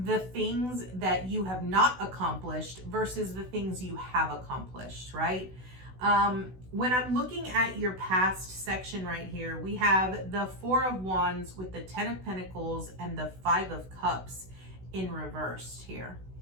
things that you have not accomplished versus the things you have accomplished, right? When I'm looking at your past section right here, we have the Four of Wands with the Ten of Pentacles and the Five of Cups in reversed here.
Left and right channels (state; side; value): late; left; 16 ms